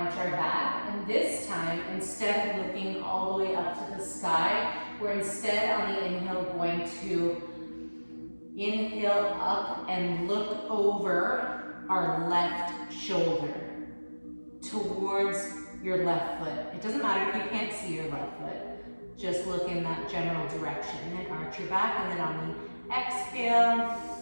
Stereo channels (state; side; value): inverted; both; correlation -1.00